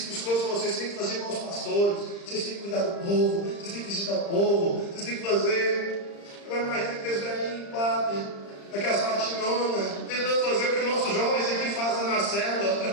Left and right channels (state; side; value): late; right; 35 ms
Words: todos vocês têm que fazer igual os pastores. Vocês têm que cuidar do povo. Vocês têm que visitar o povo. Vocês têm que fazer. Agora imagina aqueles velhinhos, padre, aquelas batinonas, tentando fazer o que nossos jovens aqui fazem na